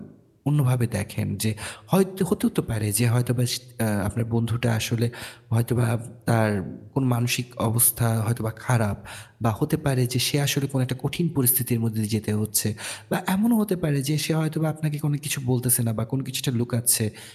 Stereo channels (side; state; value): both; identical; correlation 1.00